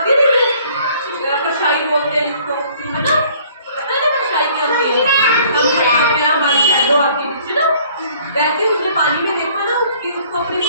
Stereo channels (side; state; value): both; inverted; correlation -0.57